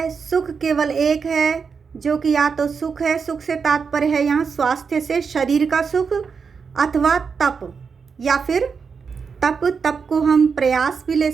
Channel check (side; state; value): left; quieter; 5.7 dB